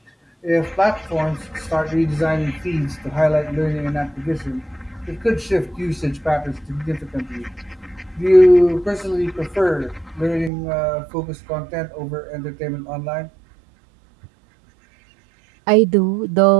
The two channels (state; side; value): drops out; left; at 10.5 s